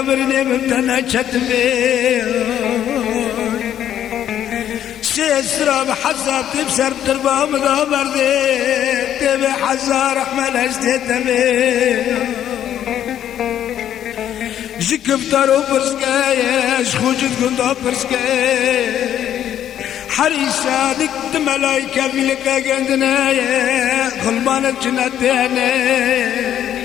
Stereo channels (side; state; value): right; quieter; 10.6 dB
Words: برني ممتنا شتبي اسراب حساب تبسر تربا مدامر دي تبي حزار احمل اشتتبي جكفتارو برسكايش خوجت كندا برسكاي حريصة دكت ملايكة في لكا قندنايا خلبان الجنة